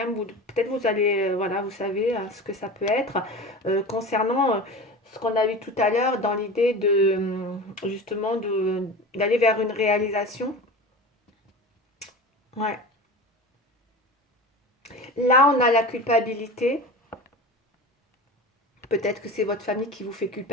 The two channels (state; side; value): normal; both; correlation 0.32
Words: peut-être vous allez, voilà, vous savez ce que ça peut être. Concernant ce qu'on a vu tout à l'heure dans l'idée de, justement, d'aller vers une réalisation. Ouais. Là, on a la culpabilité. Peut-être que c'est votre famille qui vous fait